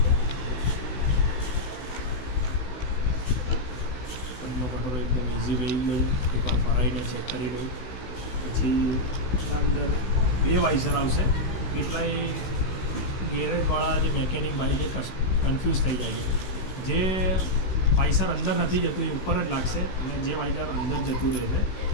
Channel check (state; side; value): late; right; 16 ms